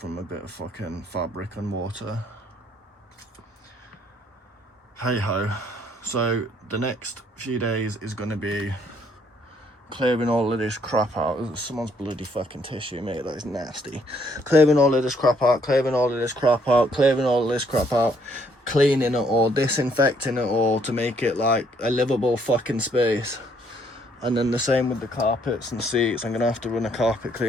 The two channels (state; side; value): normal; both; correlation 0.68